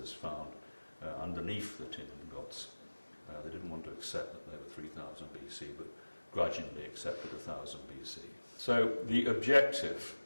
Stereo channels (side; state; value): both; inverted; correlation -1.00